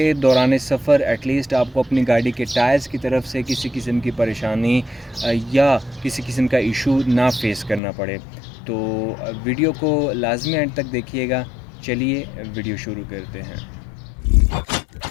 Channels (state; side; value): drops out; right; at 7.8 s